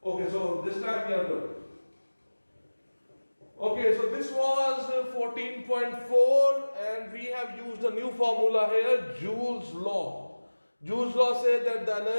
Okay, so this time we are good. Okay, so this was 14.4 and we have used a new formula here, Joule's law. Joule's law says that the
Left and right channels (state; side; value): inverted; both; correlation -1.00